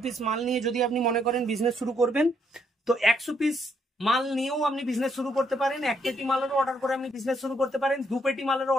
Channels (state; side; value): normal; both; correlation 0.73